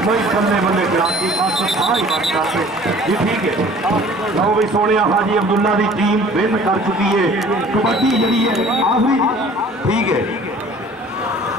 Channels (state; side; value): normal; both; correlation 0.50